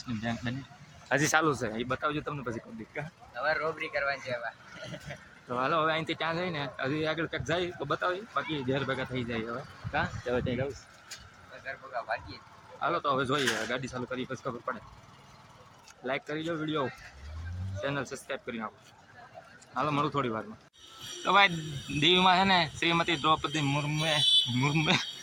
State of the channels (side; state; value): both; identical; correlation 1.00